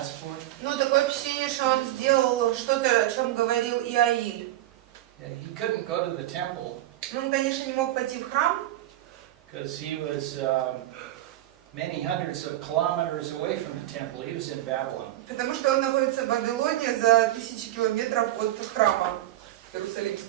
for? Ну, такое впечатление, что он сделал что-то, о чем говорил Иаиль. He couldn't go to the temple Ну, он, конечно, не мог пойти в храм, because he was many hundreds of kilometers away from the temple. He was in Babylon. потому что он находится в Вавилоне за 1000 километров от храма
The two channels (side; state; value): left; quieter; 14.6 dB